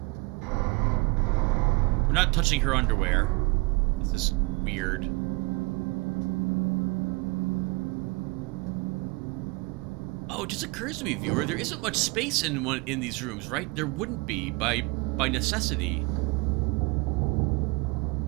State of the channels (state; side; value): quieter; left; 26.9 dB